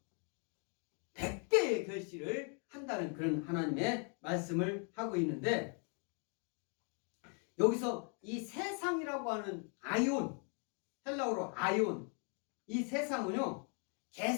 100배의 결실을 한다는 그런 하나님의 말씀을 하고 있는데 여기서 이 세상이라고 하는 아이온, 헬라어로 아이온, 이 세상은요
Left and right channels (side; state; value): right; quieter; 39.7 dB